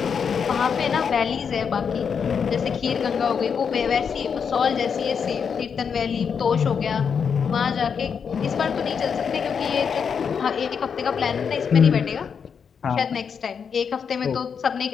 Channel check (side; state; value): right; quieter; 6.6 dB